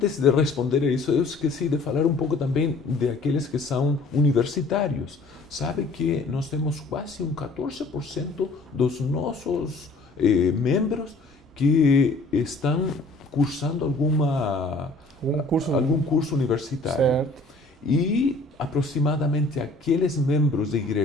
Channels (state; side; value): quieter; right; 3.2 dB